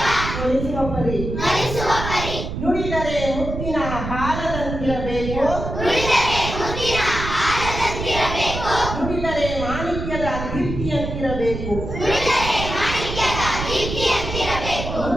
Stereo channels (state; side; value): noise; right; rumble, 6 dB below the sound